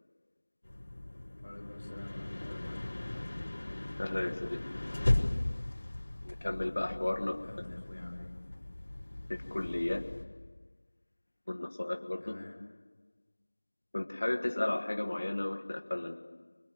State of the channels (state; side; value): inverted; both; correlation -1.00